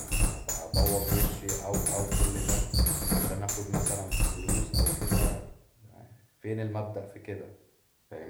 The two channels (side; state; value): both; identical; correlation 1.00